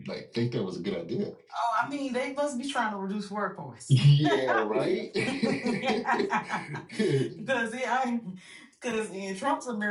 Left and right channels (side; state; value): both; identical; correlation 1.00